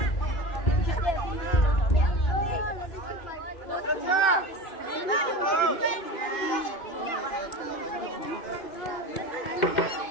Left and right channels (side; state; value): right; late; 2.5 ms